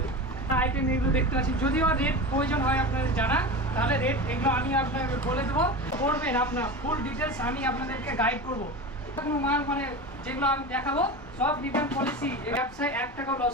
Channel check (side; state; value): both; normal; correlation 0.27